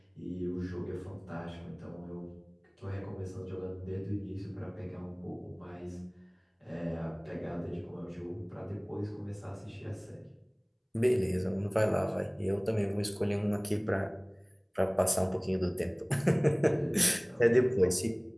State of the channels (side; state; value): both; identical; correlation 1.00